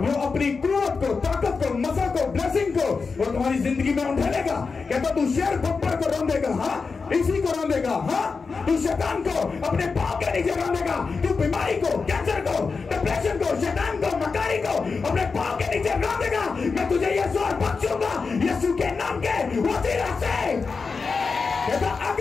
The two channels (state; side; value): quieter; right; 4.7 dB